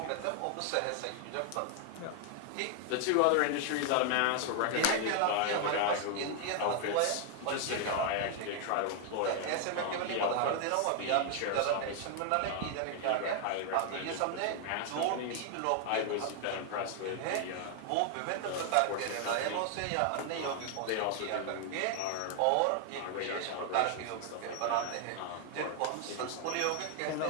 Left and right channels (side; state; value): both; different; correlation 0.00